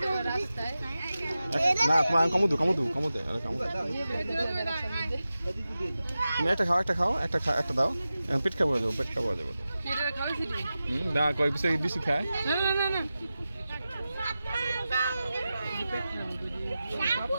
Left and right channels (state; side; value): inverted; both; correlation -0.94